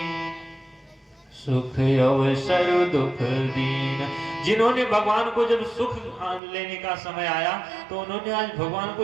सुख अवसर दुख दीन। जिन्होंने भगवान को जब सुख लेने का समय आया तो उन्होंने आज भगवान को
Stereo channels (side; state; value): left; drops out; at 6.4 s